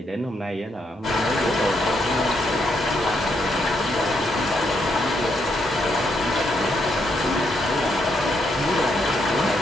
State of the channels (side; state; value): both; normal; correlation 0.77